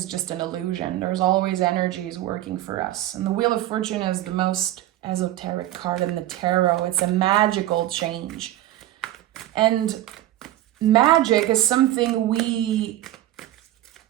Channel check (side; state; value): left; quieter; 14.2 dB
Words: just an illusion. There's always energies working for us. And the Wheel of Fortune is the most esoteric card in the tarot. It's a magical change. And magic is something we